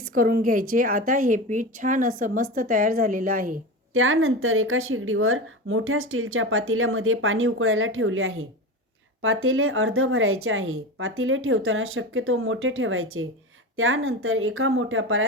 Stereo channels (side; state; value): both; normal; correlation 0.25